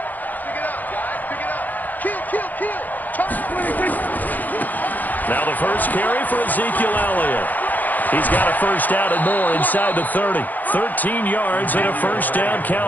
Pick it up, guys. Pick it up. Kill. Now the first carry for Ezekiel Elliott. He's got a first down and more inside the 30. 13 yards and a first down,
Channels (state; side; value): late; right; 0.083 ms